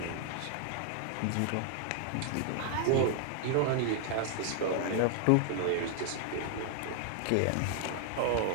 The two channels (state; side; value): different; both; correlation 0.00